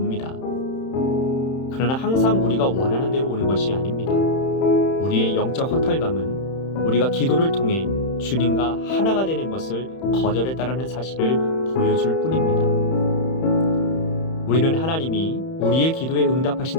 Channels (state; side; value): late; right; 31 ms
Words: 그러나 항상 우리가 원하는 대로 오는 것이 아닙니다. 우리의 영적 허탈감은 우리가 기도를 통해 주님과 하나가 되는 것을 거절했다라는 사실을 보여줄 뿐입니다. 우리는 하나님이 우리의 기도에